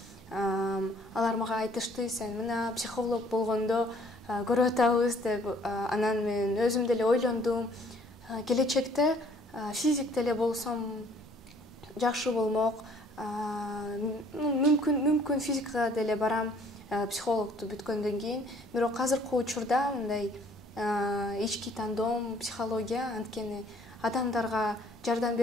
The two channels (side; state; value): both; normal; correlation 0.59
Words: алар мага айтышты: "Сен мына психолог болгондо көрүп атабыз" деп. Анан мен өзүм деле ойлондум. Келечекте физик деле болсом жакшы болмок. Мүмкүн физикага деле барам, психологду бүткөндөн кийин. Бирок азыркы учурда мындай ички тандоом психология, анткени адамдарга жардам